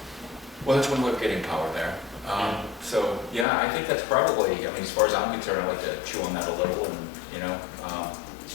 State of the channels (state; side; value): drops out; right; at 3.5 s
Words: Well, that's one way of getting power there. So, yeah, I think that's probably, I mean, as far as I'm concerned, I'd like to chew on that a little and, you know,